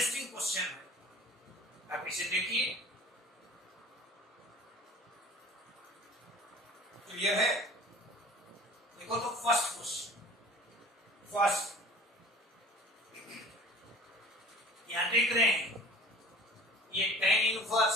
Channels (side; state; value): both; normal; correlation 0.44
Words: क्वेश्चन है, आप इसे देखिए। क्लियर है? देखो तो फर्स्ट क्वेश्चन, यहां देख रहे हैं ये tan